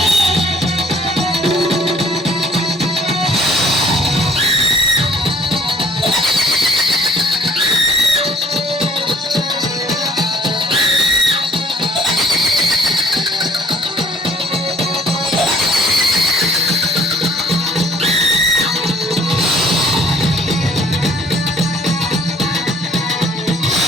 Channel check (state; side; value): normal; both; correlation 0.57